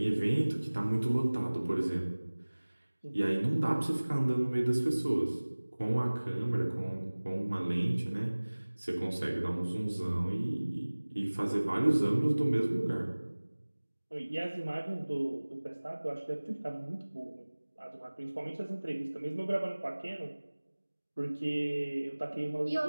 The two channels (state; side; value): inverted; both; correlation -1.00